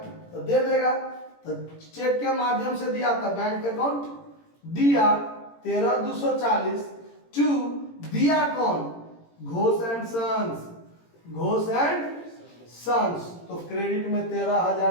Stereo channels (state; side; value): late; right; 18 ms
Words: तो दे देगा, तो चेक के माध्यम से दिया था, बैंक अकाउंट दिया 13,240 टू दिया कौन? Ghosh and sons. तो क्रेडिट में